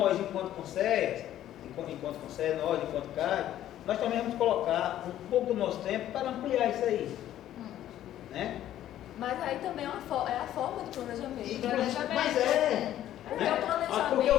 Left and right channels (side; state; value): right; quieter; 12.3 dB